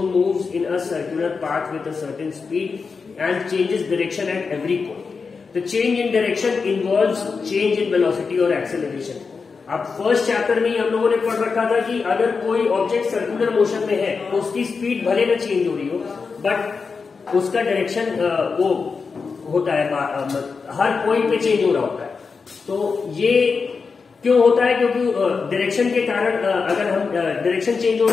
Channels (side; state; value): right; quieter; 5.0 dB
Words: moves in a circular path with a certain speed and changes direction at every point. The change in direction involves change in velocity और acceleration. अब first chapter में ही हम लोगों ने पढ़ रखा था कि अगर कोई ऑब्जेक्ट सर्कुलर मोशन में है तो उसकी स्पीड भले ना चेंज हो रही हो, बट उसका डायरेक्शन वो होता है, हर पॉइंट पे चेंज हो रहा होता है। तो ये क्यों होता है? क्योंकि डायरेक्शन के कारण अगर हम डायरेक्शन चेंज हो